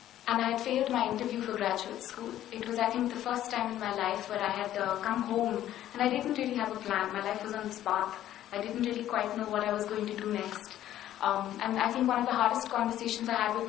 And I had failed my interview for graduate school. It was, I think, the first time in my life where I had come home and I didn't really have a plan. My life was on this path. I didn't really quite know what I was going to do next. And I think one of the hardest conversations I had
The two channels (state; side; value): quieter; right; 12.5 dB